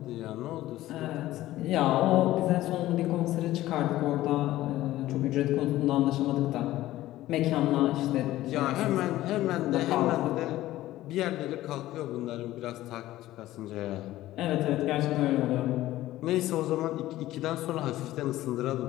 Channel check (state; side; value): quieter; right; 15.4 dB